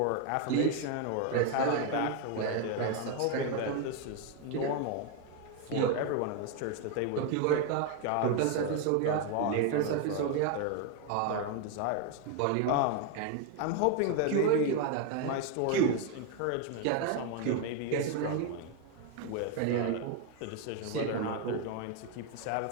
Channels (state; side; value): different; both; correlation 0.01